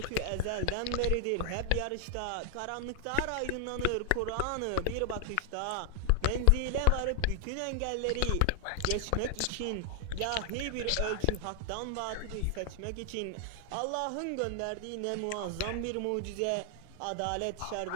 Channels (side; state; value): both; different; correlation 0.00